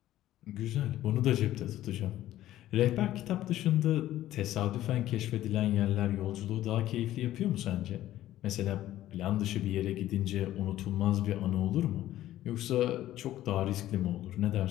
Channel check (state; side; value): quieter; right; 13.8 dB